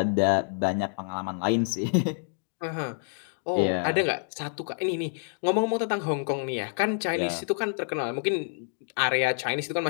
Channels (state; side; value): silent; right; digital silence